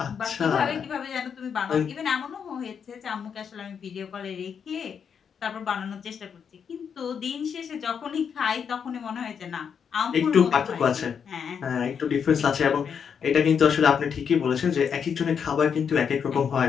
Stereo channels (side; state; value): right; quieter; 7.1 dB